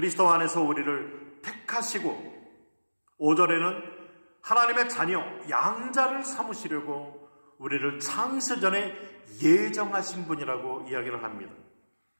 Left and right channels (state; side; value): inverted; both; correlation -1.00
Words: 안에서 우리를 택하시고 5절에는 하나님의 자녀, 양자를 삼으시려고 우리를 창세 전에 예정하신 분이라고 이야기를 합니다.